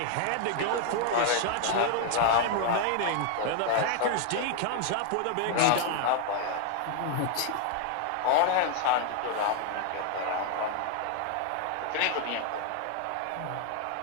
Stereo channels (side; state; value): both; different; correlation 0.00